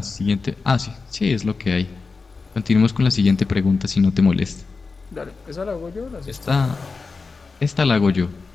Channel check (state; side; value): quieter; right; 4.4 dB